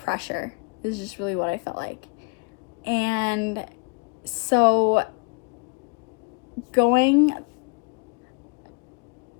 is just really what I felt like. And so going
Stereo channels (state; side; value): quieter; right; 32.6 dB